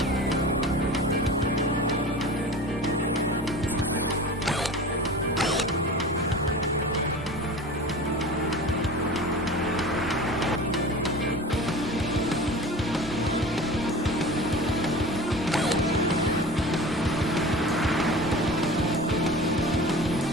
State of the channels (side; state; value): both; normal; correlation 0.36